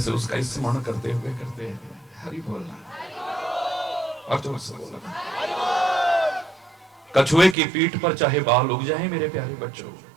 उसका स्मरण करते हुए करते हैं। हरि बोलना और जोर से बोलना। कछुए की पीठ पर चाहे बाल उग जाए मेरे प्यारे बच्चों,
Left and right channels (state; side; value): drops out; left; at 7.6 s